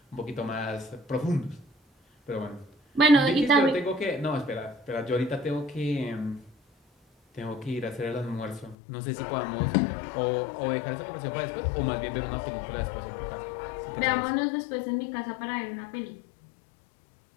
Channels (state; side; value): drops out; right; at 8.8 s